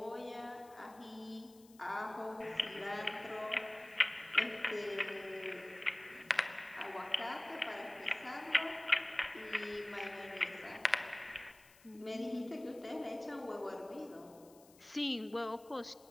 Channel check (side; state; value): left; noise; hiss, 25 dB below the sound